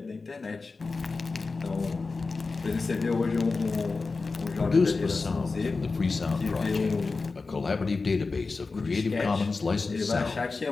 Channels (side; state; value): right; quieter; 4.1 dB